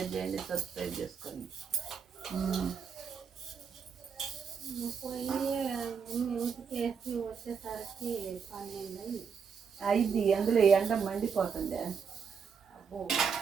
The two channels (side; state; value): left; quieter; 6.3 dB